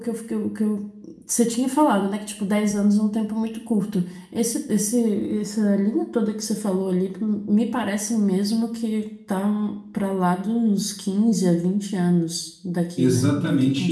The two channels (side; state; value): both; identical; correlation 1.00